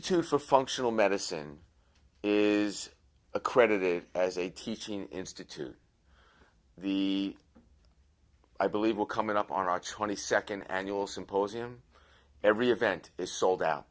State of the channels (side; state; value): both; identical; correlation 1.00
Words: for Functional Medicine is accredited as a teaching institute. I believe we're coming up on our 22nd annual symposium. Every event is sold out.